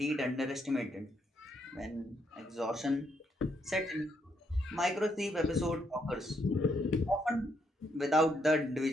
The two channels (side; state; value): both; normal; correlation 0.75